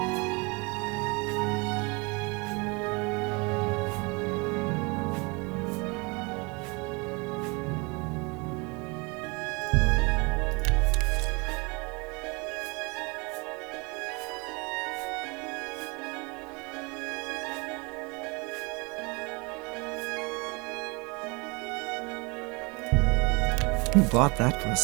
Who bought that for a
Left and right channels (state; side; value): quieter; left; 28.7 dB